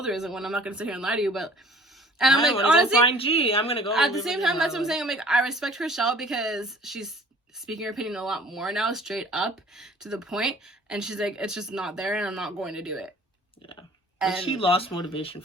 there isn't one. I'm not gonna sit here and lie to you, but." And I'm like, honestly, find G. I'm gonna go. At the same time, that's what I'm saying. I'm like, I respect Chrishell because she's speaking her opinion a lot more now, straight up to the point. And she's like, it's just not there, and I'm not going to do it. Yeah. And she lost motivation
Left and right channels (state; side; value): normal; both; correlation 0.50